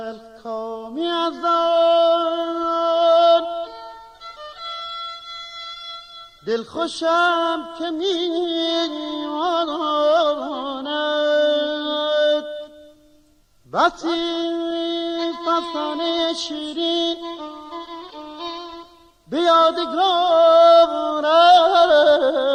کامی از آن دل خوشم که میماند بسی فسانه شیرین به یادگار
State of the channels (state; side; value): identical; both; correlation 1.00